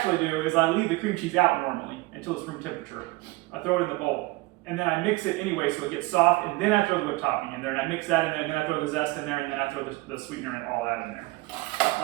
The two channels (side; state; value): left; quieter; 21.8 dB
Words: do is I leave the cream cheese out normally until it's room temperature. I throw it in the bowl, and then I mix it anyway so it gets soft, and then I throw the whipped topping in there, and I mix that in there, and then I throw the zest in there, and then I throw the sweetener and all that in there.